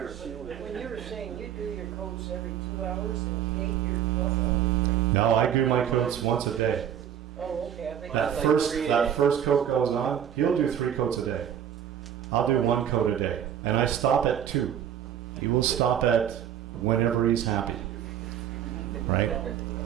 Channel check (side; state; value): left; quieter; 9.7 dB